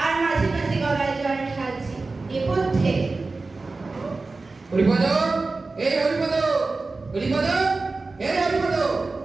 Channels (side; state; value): left; quieter; 3.7 dB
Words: আর মাঝে মাঝে গলায় জল ঢালছে। নেপথ্যে হরিপদ, এই হরিপদ, হরিপদ, এই হরিপদ।